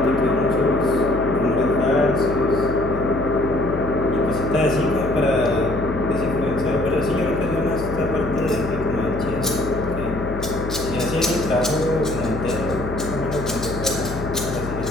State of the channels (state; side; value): noise; left; hum, 9 dB below the sound